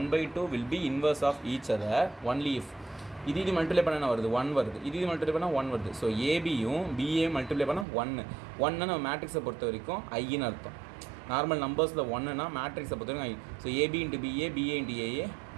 will be inverse of each other only if. இது மல்டிப்ளை பண்ண என்ன வருது 1 வருது. இது மல்டிப்ளை பண்ணால் 1 வருது. ஸோ ஏபியும் பிஏ மல்டிப்ளை பண்ணால் 1 நம்ம மேட்ரிக்ஸை பொறுத்த வரைக்கும் ஐன்னு அர்த்தம். நார்மல் நம்பர்ஸில் 1னா மேட்ரிக்ஸை பொறுத்த வரைக்கும் I. So AB into BA, BA into AA,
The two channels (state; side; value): drops out; left; at 7.9 s